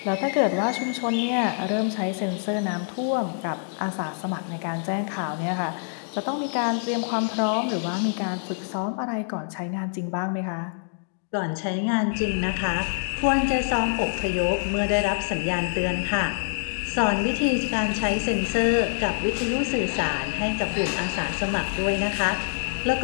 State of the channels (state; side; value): silent; right; digital silence